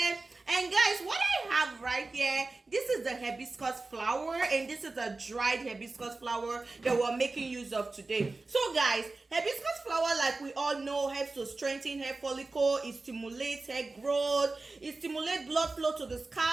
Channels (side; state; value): left; quieter; 3.5 dB